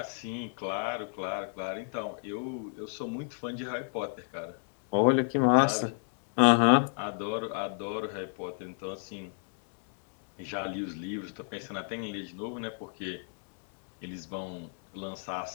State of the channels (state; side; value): silent; right; 56 dB below the other